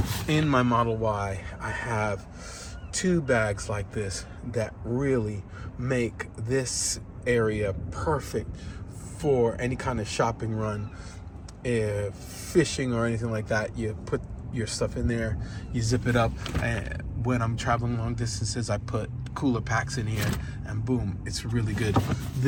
in my Model Y. I have two bags like this that really make this area perfect for any kind of shopping run, fishing or anything like that. You put your stuff in there, you zip it up, and when I'm traveling long distances, I put cooler packs in here, and boom, it's really good.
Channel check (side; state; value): both; identical; correlation 1.00